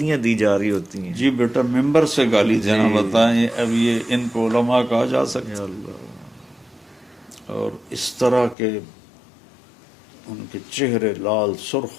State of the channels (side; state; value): right; drops out; at 8.6 s